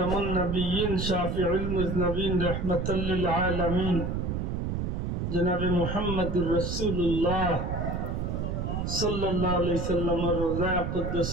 নবিয়্যিন শাফিউল মুজনবিন রাহমাতাল লিল আলামিন জনাবে মুহাম্মদুর রাসূলুল্লাহ সাল্লাল্লাহু আলাইহি সাল্লামের রোজা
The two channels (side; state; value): right; noise; rumble, 2 dB below the sound